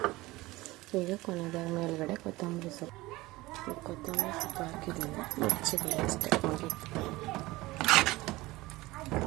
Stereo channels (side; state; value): left; quieter; 19.8 dB